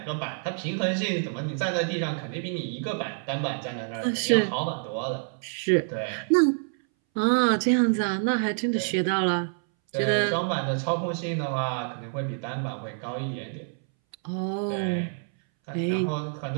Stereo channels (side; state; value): left; silent; 60 dB below the other